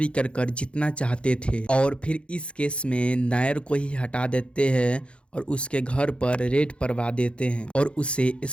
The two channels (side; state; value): right; late; 0.058 ms